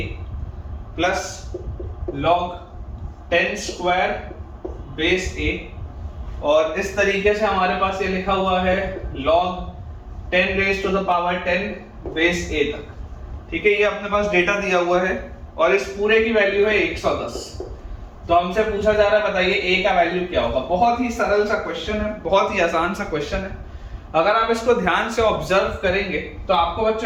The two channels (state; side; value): identical; both; correlation 1.00